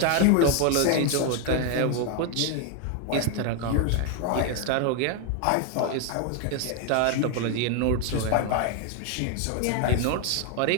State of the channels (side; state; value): both; different; correlation 0.01